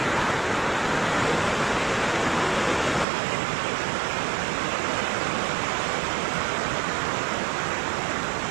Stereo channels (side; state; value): left; drops out; at 3.1 s